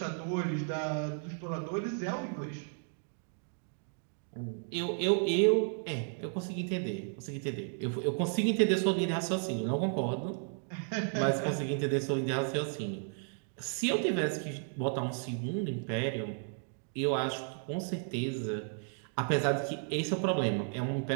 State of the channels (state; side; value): silent; left; 55 dB below the other